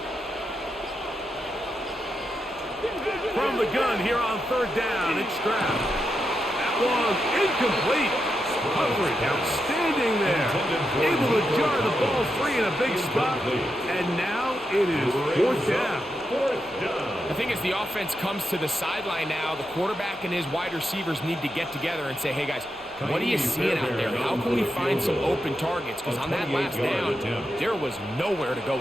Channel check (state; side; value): noise; right; hum, 28 dB below the sound